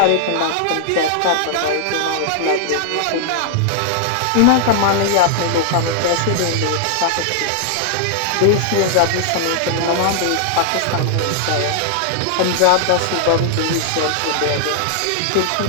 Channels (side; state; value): both; different; correlation -0.01